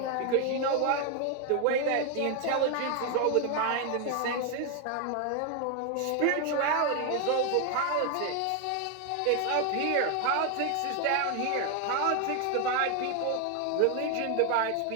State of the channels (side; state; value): both; different; correlation 0.01